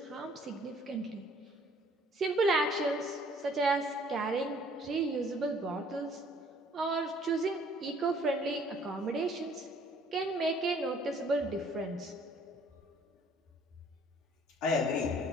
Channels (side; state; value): both; normal; correlation 0.58